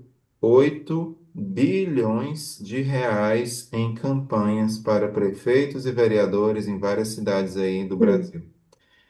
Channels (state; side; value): identical; both; correlation 1.00